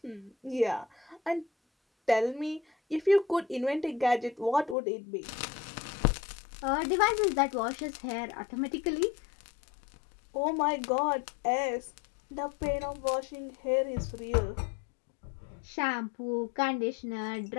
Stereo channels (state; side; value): drops out; right; at 4.8 s